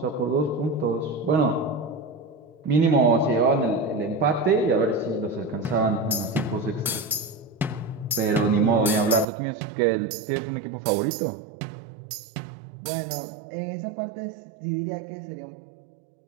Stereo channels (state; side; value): drops out; left; at 9.2 s